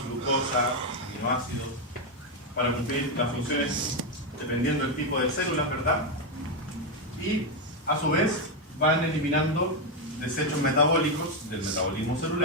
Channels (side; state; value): both; normal; correlation 0.05